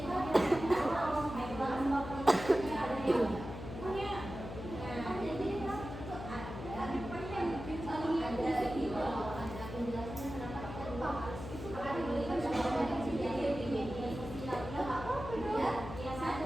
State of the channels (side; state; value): left; noise; hum, 9 dB below the sound